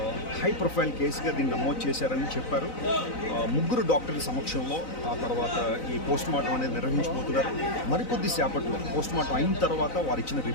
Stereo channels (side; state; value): right; late; 4.0 ms